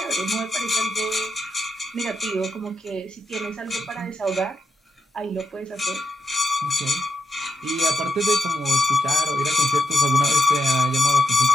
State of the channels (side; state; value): both; normal; correlation 0.81